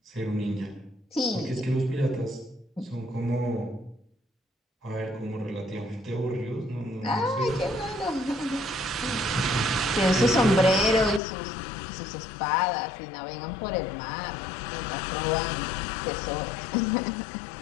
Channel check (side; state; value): right; drops out; at 11.2 s